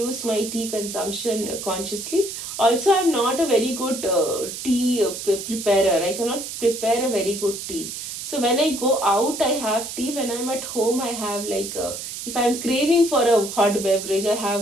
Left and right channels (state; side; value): noise; right; hiss, 8 dB below the sound